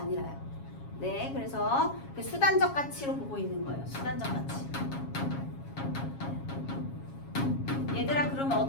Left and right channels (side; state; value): right; late; 7.3 ms